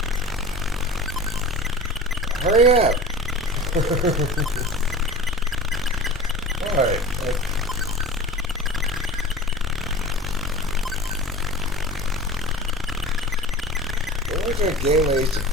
Hurry up! Alright, what was that game I used to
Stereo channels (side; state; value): both; normal; correlation 0.36